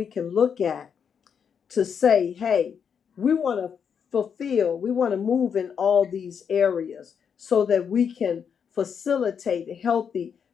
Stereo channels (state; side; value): quieter; right; 7.2 dB